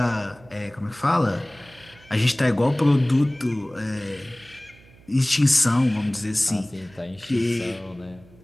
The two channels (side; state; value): right; noise; hum, 25 dB below the sound